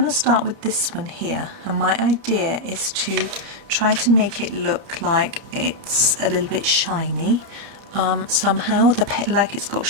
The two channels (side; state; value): left; late; 30 ms